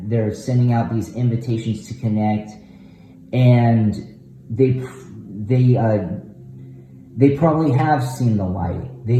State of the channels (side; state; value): both; identical; correlation 1.00